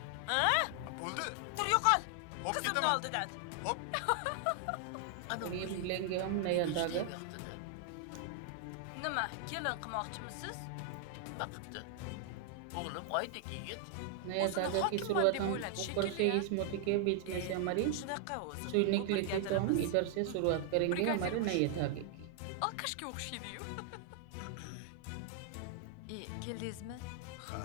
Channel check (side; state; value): both; different; correlation 0.00